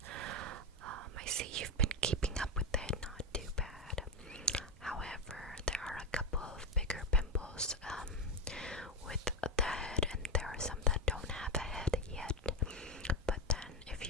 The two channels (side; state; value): both; normal; correlation 0.12